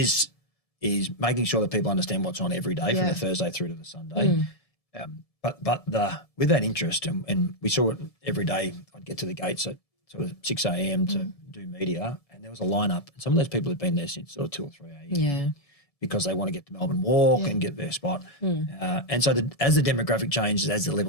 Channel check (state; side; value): late; right; 1.7 ms